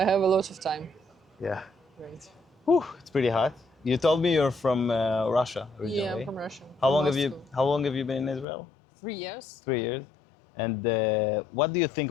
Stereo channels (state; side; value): drops out; right; at 8.5 s